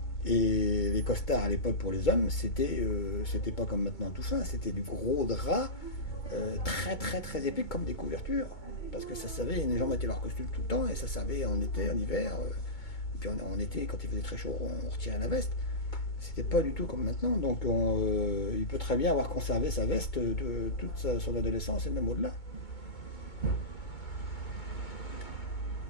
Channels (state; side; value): late; right; 2.2 ms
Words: Et les costards à l'époque pour les hommes, c'était pas comme maintenant tout fin, c'était du gros drap très très très épais comme des couvertures. Parce que ça savait, les gens mettaient leur costume tout le temps et ça savait en été, en hiver. Et puis en été, quand il faisait très chaud, on retirait la veste. C'était pas du tout comme maintenant. Donc il peut très bien avoir conservé sa veste toute son adolescence et même au-delà.